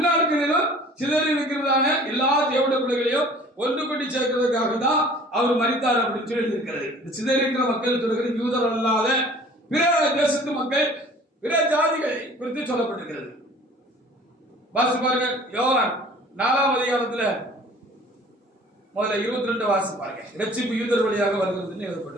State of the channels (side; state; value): both; normal; correlation 0.49